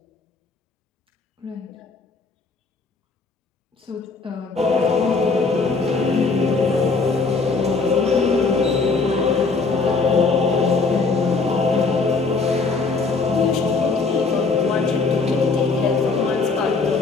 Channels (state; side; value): quieter; right; 4.2 dB